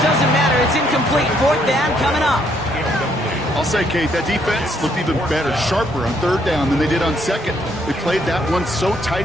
doesn't matter. It's incomplete. Fourth down coming up. I'll say, Kate, that defense looked even better, sharper on third down than they did on second. They played that one so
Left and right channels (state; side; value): normal; both; correlation 0.70